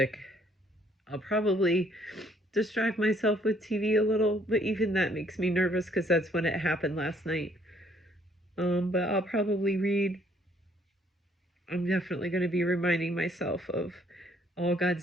I'll probably distract myself with TV a little, but even that makes me nervous because that's when it happened last night. But I'll probably read. I'm definitely going to be reminding myself of all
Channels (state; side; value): normal; both; correlation 0.65